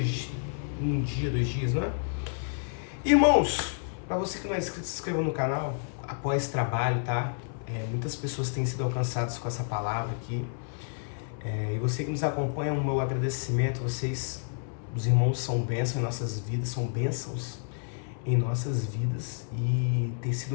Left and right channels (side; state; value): right; silent; 58 dB below the other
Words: um dia, 2 dias, não é? Irmãos, para você que não é inscrito, se inscreva no canal, apoie esse trabalho, tá? Muitas pessoas têm sido alcançadas com essa palavra aqui. E você que nos acompanha, o meu agradecimento. Vocês, os irmãos, são bênçãos em nossas vidas, são bênçãos em nossas vidas. E tem sido